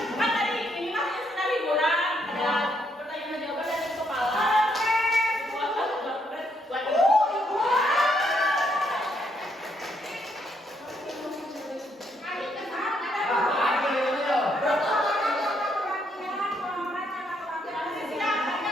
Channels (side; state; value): both; normal; correlation 0.74